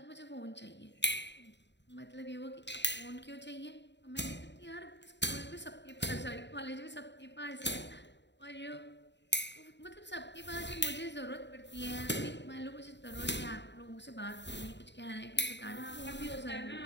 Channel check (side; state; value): right; late; 0.52 ms